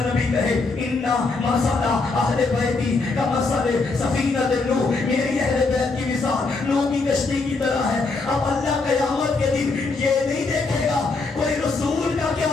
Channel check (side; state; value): right; quieter; 3.8 dB